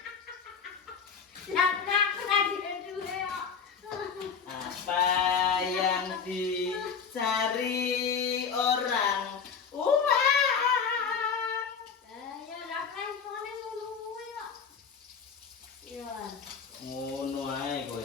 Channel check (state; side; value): quieter; right; 6.3 dB